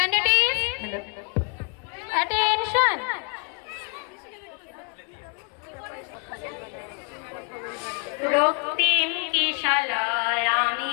is attention. রক্তিম কিশলয় আমি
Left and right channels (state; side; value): quieter; right; 38.5 dB